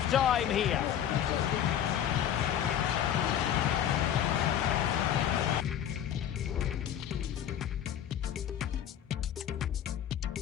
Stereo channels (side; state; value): right; quieter; 9.9 dB